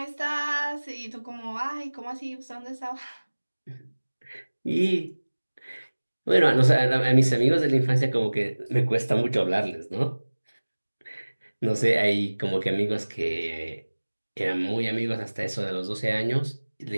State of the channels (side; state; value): both; inverted; correlation -1.00